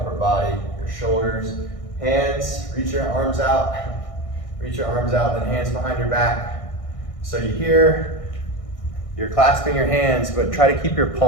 body, your shoulders. Hands, reach your arms out. Reach your arms out, then hands behind your back. So you're clasping your hands, but try to keep your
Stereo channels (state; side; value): late; right; 1.6 ms